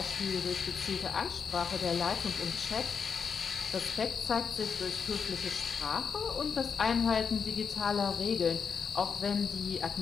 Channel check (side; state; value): right; quieter; 6.2 dB